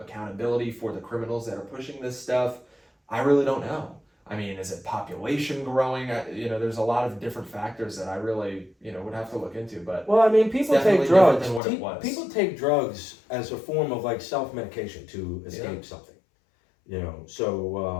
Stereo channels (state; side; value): drops out; right; at 11.6 s